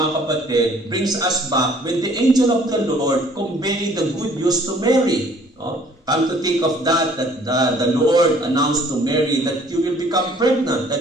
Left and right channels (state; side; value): normal; both; correlation 0.57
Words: kapatid, brings us back when the angel of the Lord conveyed the good news to Mary. No? Come to think of that the Lord announced to Mary that you will become pregnant,